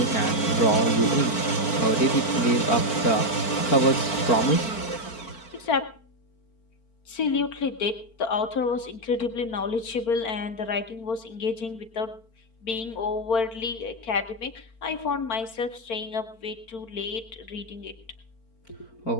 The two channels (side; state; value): right; late; 4.4 ms